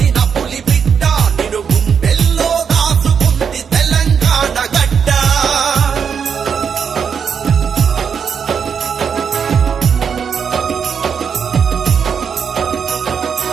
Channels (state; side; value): quieter; left; 6.9 dB